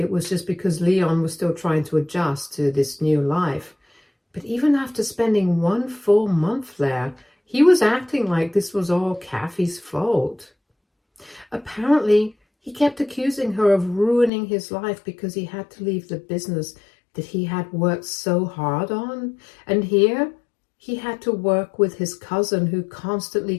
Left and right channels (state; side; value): drops out; right; at 14.3 s